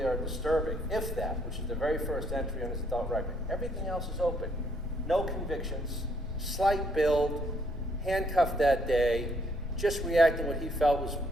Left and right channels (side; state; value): both; normal; correlation 0.69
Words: or disturbing, if that, which is the very first entry on his adult record. Everything else is open. No convictions, slight build, handcuffed that day, just reacting what he felt